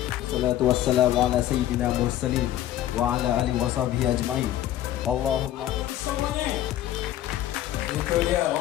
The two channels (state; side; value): quieter; right; 12.9 dB